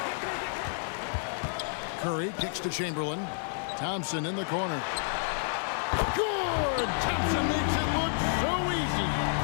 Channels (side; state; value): right; silent; digital silence